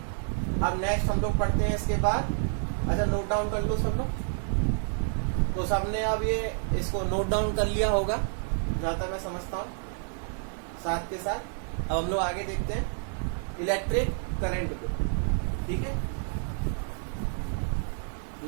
अब नेक्स्ट हम लोग पढ़ते हैं इसके बाद। अच्छा, नोट डाउन कर लो सब लोग। तो सबने अब ये इसको नोट डाउन कर लिया होगा जहां तक मैं समझता हूँ। साथ के साथ अब हम लोग आगे देखते हैं इलेक्ट्रिक करंट को। ठीक है,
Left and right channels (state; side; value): silent; left; 59 dB below the other